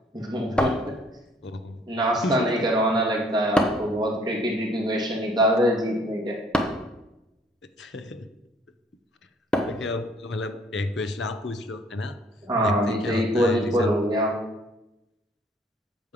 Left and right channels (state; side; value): normal; both; correlation 0.60